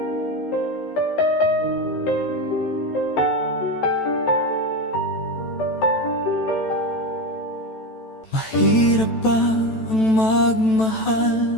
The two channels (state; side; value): late; right; 14 ms